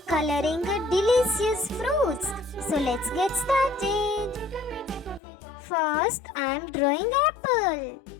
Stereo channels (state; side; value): drops out; right; at 5.2 s